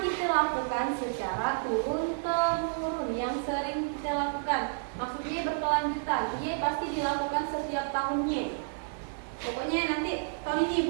kita lakukan secara turun-temurun, yang sering kita lakukan. Maksudnya berkelanjutan. Ia pasti dilakukan setiap tahunnya. Pokoknya nanti tahun ini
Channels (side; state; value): left; silent; digital silence